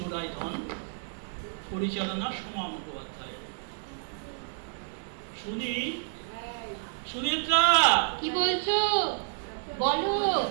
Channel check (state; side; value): silent; left; 58 dB below the other